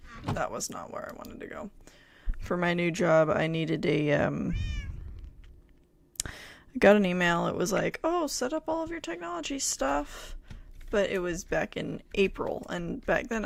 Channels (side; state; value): both; identical; correlation 1.00